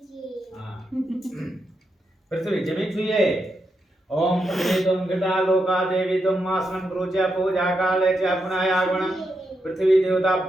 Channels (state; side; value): normal; both; correlation 0.84